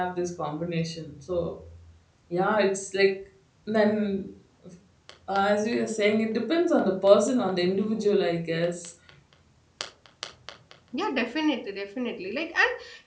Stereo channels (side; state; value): both; identical; correlation 1.00